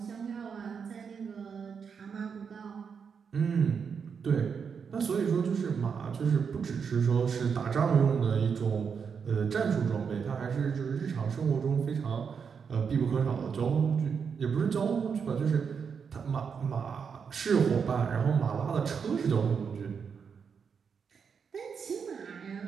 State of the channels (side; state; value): left; quieter; 6.4 dB